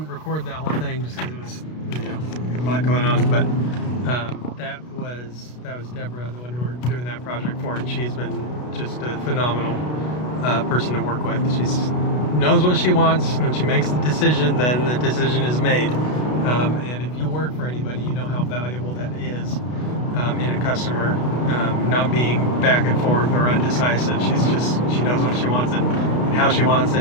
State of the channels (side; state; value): right; late; 33 ms